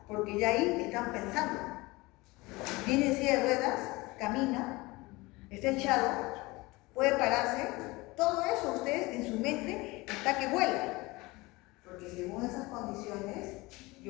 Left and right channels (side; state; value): right; quieter; 22.5 dB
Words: porque ya ahí están pensando. Viene en silla de ruedas, camina, está echado, puede pararse. Todo eso usted en su mente está que vuela. Porque según esas condiciones,